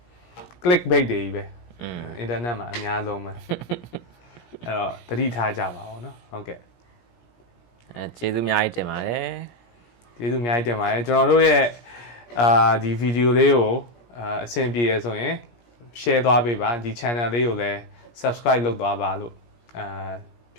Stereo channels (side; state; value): right; late; 17 ms